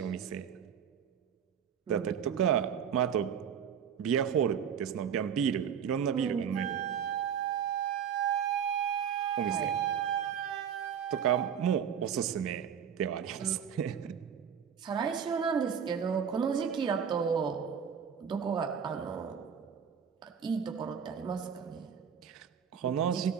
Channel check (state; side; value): quieter; left; 7.8 dB